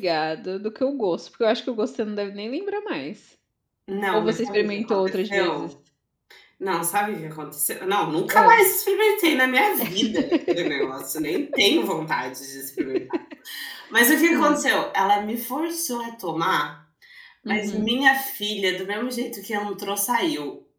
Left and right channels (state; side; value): identical; both; correlation 1.00